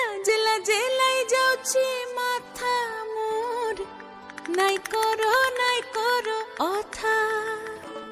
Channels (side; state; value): both; identical; correlation 1.00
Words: লাজে লাই যাଉଛି মাথা মোর, নাই করো অথা।